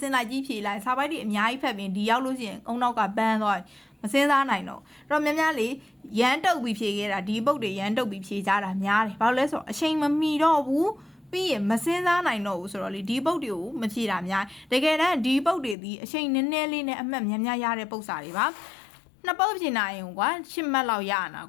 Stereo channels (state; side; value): drops out; right; at 15.8 s